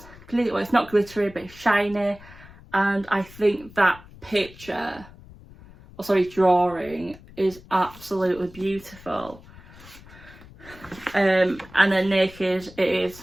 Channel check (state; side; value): noise; left; rumble, 21 dB below the sound